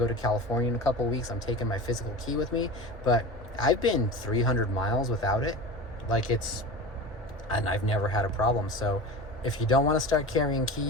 to California in a couple of weeks, I'm taking my physical key with me. But I've been 300 miles without it. And I've never had a problem. So if you don't want to start carrying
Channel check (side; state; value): both; normal; correlation 0.31